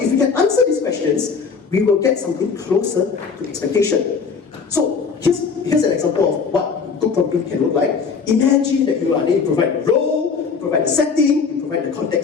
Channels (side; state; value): right; quieter; 5.5 dB